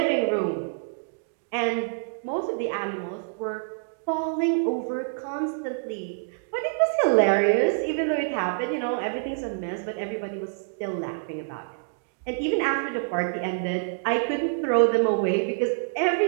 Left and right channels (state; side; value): silent; left; digital silence